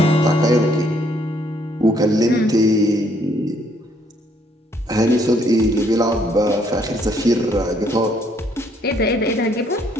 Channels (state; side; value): normal; both; correlation 0.68